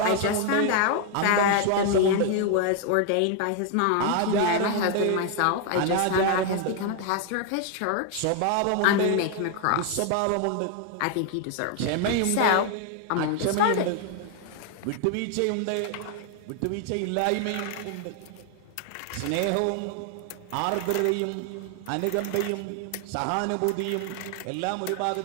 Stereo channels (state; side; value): different; both; correlation 0.00